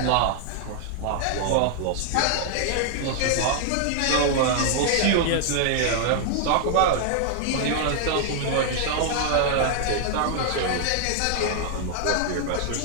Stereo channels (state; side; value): different; both; correlation 0.00